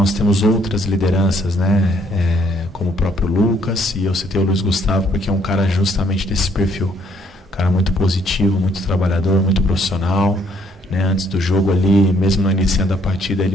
temos outras lideranças, né? Como o próprio Lucas, e eu citei o Luiz Gustavo porque é um cara justamente desse perfil, um cara muito positivo, muito trabalhador, muito profissional, né? Antes do jogo ali, mesmo no início da partida,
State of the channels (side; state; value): both; normal; correlation 0.66